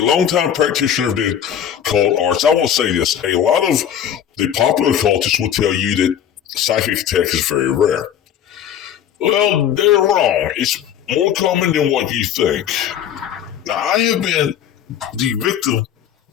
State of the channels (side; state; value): right; quieter; 9.5 dB